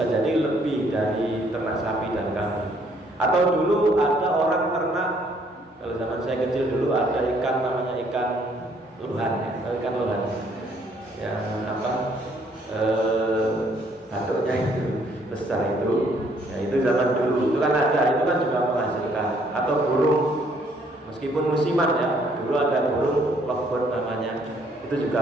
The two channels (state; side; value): normal; both; correlation 0.65